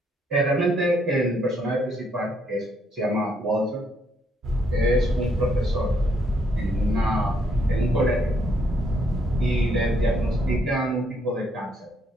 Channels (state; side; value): normal; both; correlation 0.72